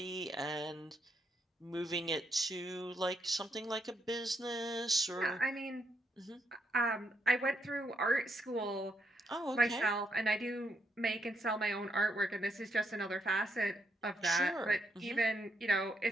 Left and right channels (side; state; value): both; normal; correlation 0.77